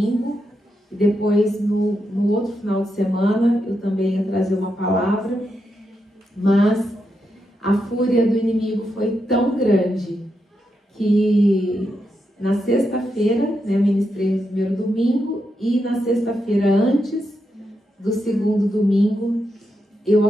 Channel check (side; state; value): both; normal; correlation 0.84